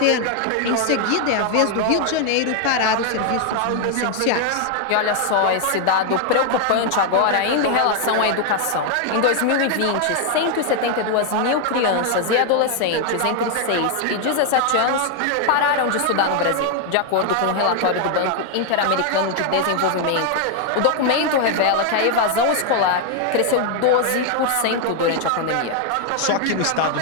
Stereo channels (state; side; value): different; both; correlation 0.00